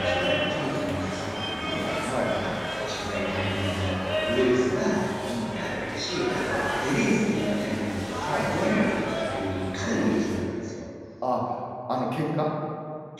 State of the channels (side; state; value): both; identical; correlation 1.00